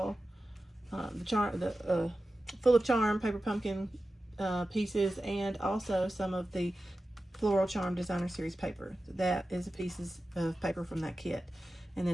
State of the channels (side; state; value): both; normal; correlation 0.94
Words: Full of Charm paper pumpkin pieces, and also some of the Floral Charm Designer Series paper. That is pieces of paper from that kit. And